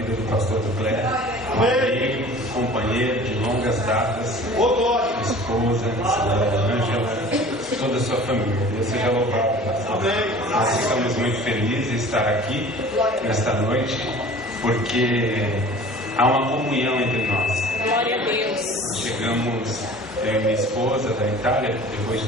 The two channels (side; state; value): both; normal; correlation 0.44